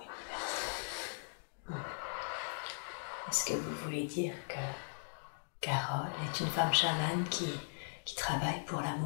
Est-ce que vous voulez dire que Carole est une femme chamane qui travaille pour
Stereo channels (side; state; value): right; silent; digital silence